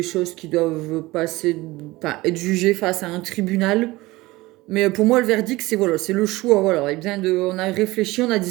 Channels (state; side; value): quieter; left; 20.0 dB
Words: choses qui doivent passer, enfin, être jugées face à un tribunal. Mais pour moi, le verdict, c'est voilà, c'est le choix. Voilà, et bien on a réfléchi, on a